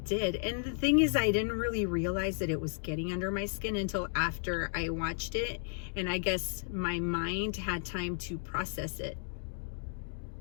And the thing is, I didn't really realize that it was getting under my skin until after I watched it. And I guess my mind had time to process it,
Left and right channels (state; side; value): silent; right; 55 dB below the other